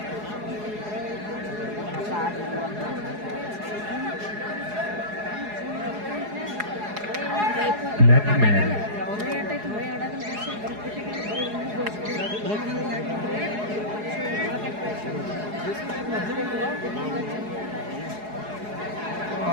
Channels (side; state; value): left; late; 4.8 ms